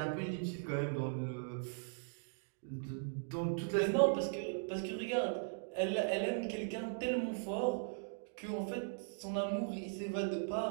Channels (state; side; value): silent; left; digital silence